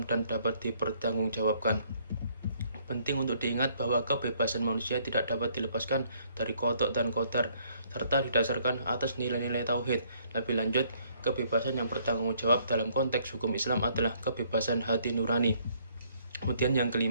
dan dapat dipertanggungjawabkan. Penting untuk diingat bahwa kebebasan manusia tidak dapat dilepaskan dari kodok dan kodar, serta didasarkan atas nilai-nilai tauhid. Lebih lanjut, kebebasan yang bertanggung jawab dalam konteks hukum Islam adalah kebebasan hati nurani. Kemudian yang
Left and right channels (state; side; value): inverted; both; correlation -0.65